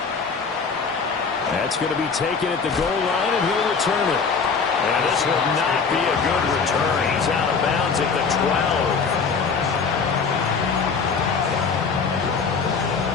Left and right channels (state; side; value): quieter; right; 5.3 dB